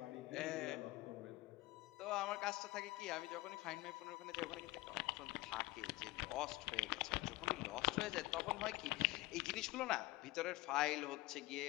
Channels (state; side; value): quieter; right; 19.9 dB